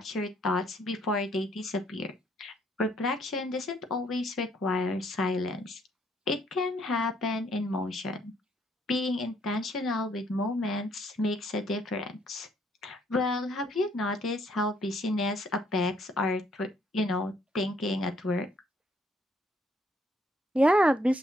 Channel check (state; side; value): normal; both; correlation 0.67